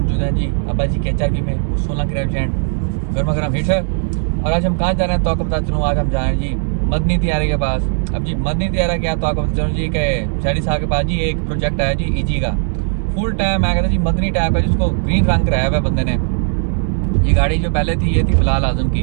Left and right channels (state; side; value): silent; left; 61 dB below the other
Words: मौजूद हैं जी अब्बा जी के HRV में 16 के रेस्टोरेंट गर्मा गर्म हिट है। और आज हम कहाँ जा रहे हैं तो आपको बता चलूँ, आज हम जा रहे हैं जी मदनी तियारे के पास। अब जी मदनी तियारा क्या तो आपको बता चलूँ जी कि शहरी साहब के पास जी एक प्रोजेक्ट है जी EG का फुल टाइम। मैं कहता जी मदनी टाइप का जिसको ग्रीन रंग कराया हुआ है बंदे ने। ये गाड़ी जो पहले थी ये थी बिलाल आजम